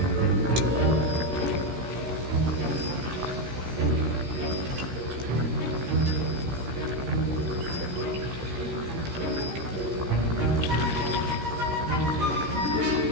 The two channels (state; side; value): late; left; 16 ms